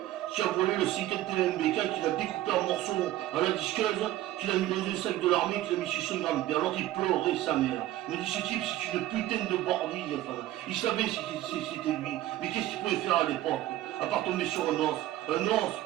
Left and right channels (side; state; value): left; quieter; 14.7 dB